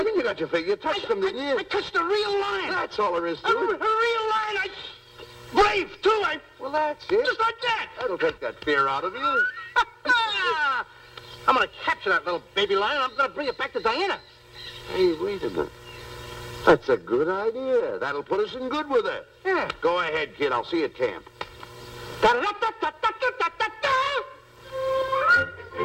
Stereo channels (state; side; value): identical; both; correlation 1.00